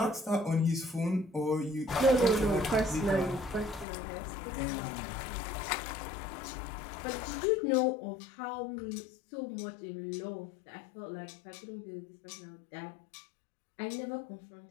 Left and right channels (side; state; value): right; drops out; at 3.9 s